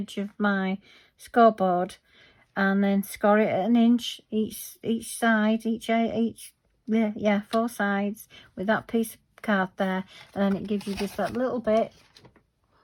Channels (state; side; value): identical; both; correlation 1.00